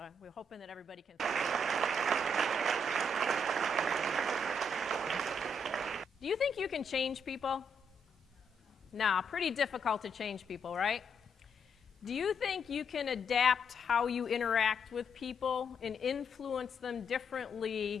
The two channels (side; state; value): both; normal; correlation 0.76